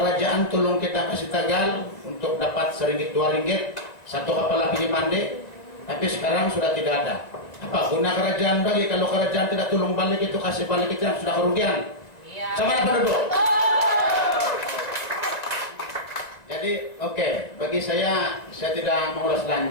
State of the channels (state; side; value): late; right; 2.0 ms